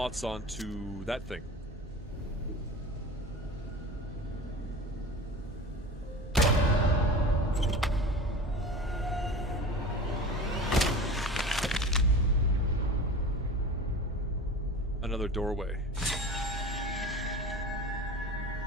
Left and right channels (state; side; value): normal; both; correlation 0.35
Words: onto that thing. Another doorway.